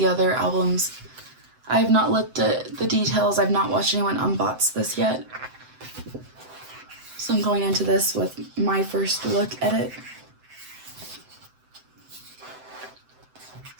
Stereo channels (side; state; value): left; late; 7.8 ms